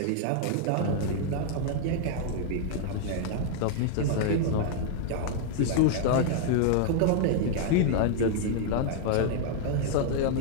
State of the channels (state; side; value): different; both; correlation -0.01